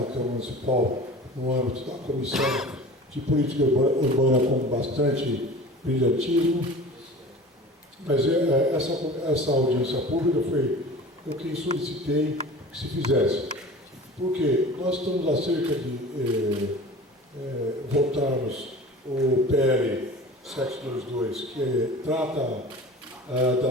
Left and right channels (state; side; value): normal; both; correlation 0.39